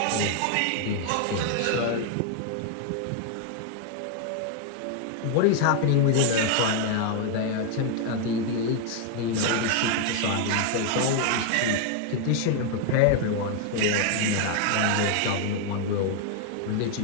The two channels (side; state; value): both; different; correlation 0.00